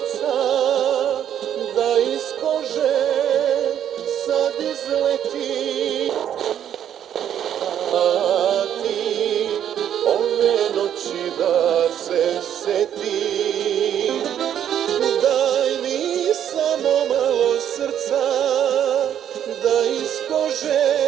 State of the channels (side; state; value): left; quieter; 9.9 dB